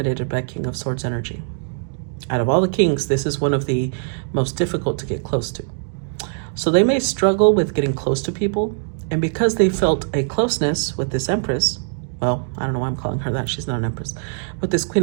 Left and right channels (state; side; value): silent; left; digital silence